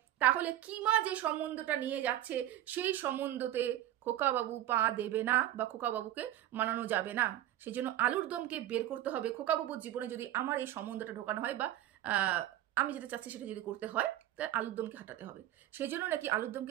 তাহলে কিমা যে সম্বন্ধটা নিয়ে যাচ্ছে সেই সম্বন্ধতে খোকাবাবু পা দেবে না বা খোকাবাবুকে মানানো যাবে না। সেই জন্য আলুর দমকে বের করতে হবে। খোকাবাবুর জীবনে যদি আমার এই সম্বন্ধটা ঢোকানো হয় বা আমি যেটা চাচ্ছি সেটা যদি করতে হয়, তাহলে আলুর দমকে হাঁটাতে হবে। সেই জন্য নাকি আলুর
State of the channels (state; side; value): quieter; left; 13.4 dB